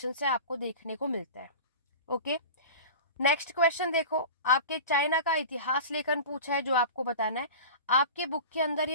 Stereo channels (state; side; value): inverted; both; correlation -0.34